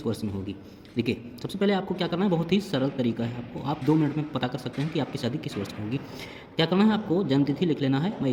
वर्ष में होगी। देखिए, सबसे पहले आपको क्या करना है, बहुत ही सरल तरीका है, आपको आप 2 मिनट में पता कर सकते हैं कि आपकी शादी किस वर्ष में होगी। क्या करना है, आपको जन्म तिथि लिख लेना है। मैं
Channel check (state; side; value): identical; both; correlation 1.00